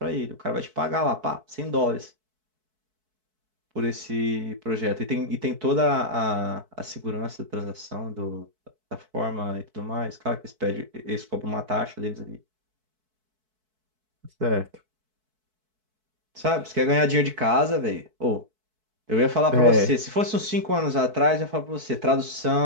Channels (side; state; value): left; late; 4.6 ms